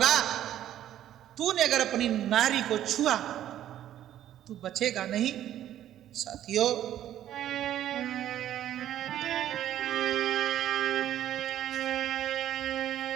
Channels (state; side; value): quieter; left; 11.8 dB